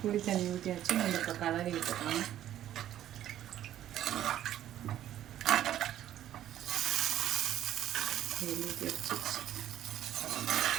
புளி தண்ணி ஊற்றியாச்சு. நம்ம இப்போ கலரி விட்டுக்கலாம். ஊற்றி வச்சு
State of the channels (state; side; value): quieter; left; 12.0 dB